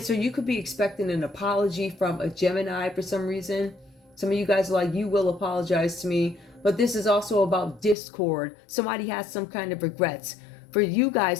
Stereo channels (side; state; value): right; drops out; at 8.0 s